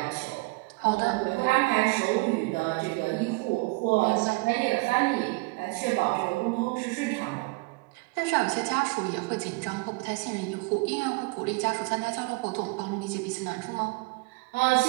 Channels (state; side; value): quieter; left; 26.7 dB